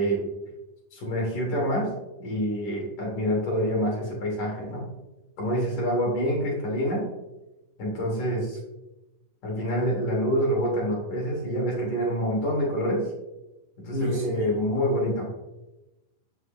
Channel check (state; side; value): late; right; 10 ms